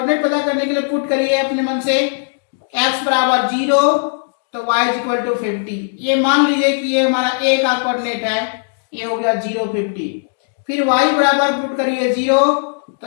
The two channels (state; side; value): silent; right; digital silence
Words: पता करने के लिए पुट करिए अपने मन से x बराबर 0 तो y इज इक्वल टू 50। ये मान लीजिए कि ये हमारा a का कोऑर्डिनेट है, ये हो गया 0 50। फिर y बराबर पुट करिए 0 तो